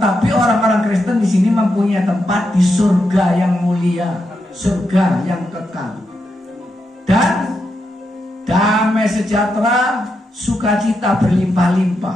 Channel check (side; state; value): both; normal; correlation 0.84